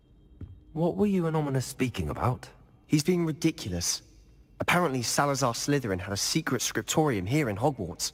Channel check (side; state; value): both; identical; correlation 1.00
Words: What were you and Ominous speaking about? He's being ridiculous. Apparently Salazar Slytherin had a secret scriptorium here in Hogwarts.